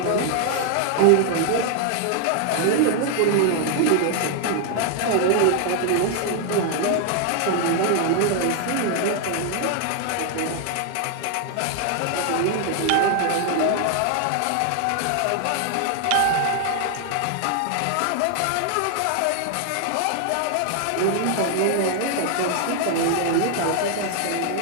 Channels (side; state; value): both; different; correlation 0.00